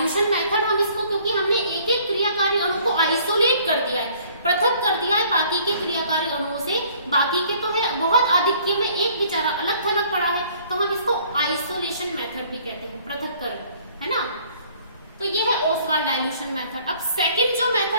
मेथड। हम इसको, क्योंकि हमने एक एक क्रियाकारी अणु को आइसोलेट कर दिया है, पृथक कर दिया है बाकी के क्रियाकारी अणुओं से, बाकी के तो है बहुत आधिक्य में, एक बेचारा अलग थलग पड़ा है, तो हम इसको आइसोलेशन मेथड भी कहते हैं, पृथक्करण, है ना। तो ये है ओसवाल्ड डाइल्यूशन मेथड। अब सेकंड जो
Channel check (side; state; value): both; inverted; correlation -0.58